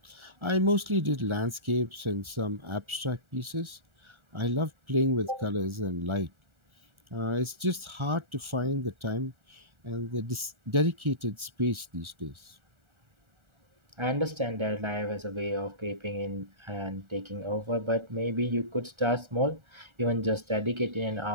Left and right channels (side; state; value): left; late; 1.4 ms